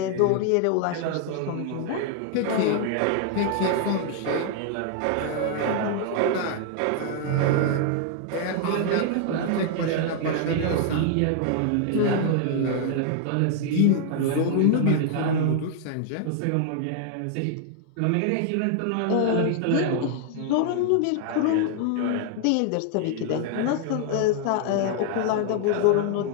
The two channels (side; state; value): both; different; correlation 0.00